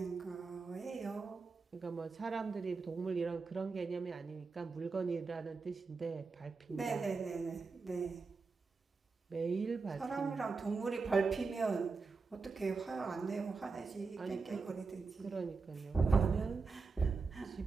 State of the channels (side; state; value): left; quieter; 4.5 dB